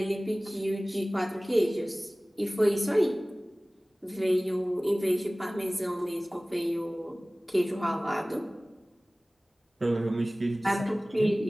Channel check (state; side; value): normal; both; correlation 0.98